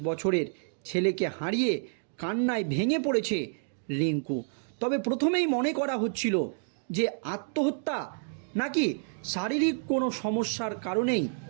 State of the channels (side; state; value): left; silent; digital silence